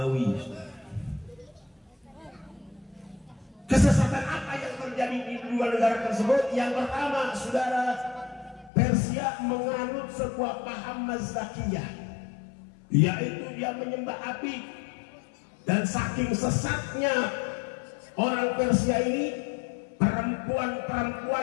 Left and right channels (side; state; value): right; drops out; at 8.7 s